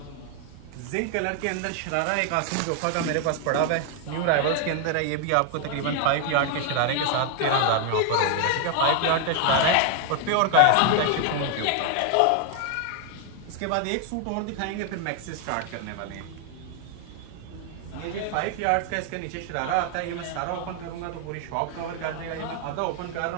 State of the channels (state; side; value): different; both; correlation 0.00